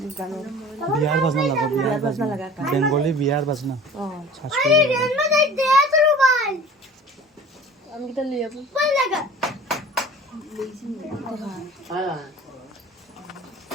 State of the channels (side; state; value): both; normal; correlation 0.43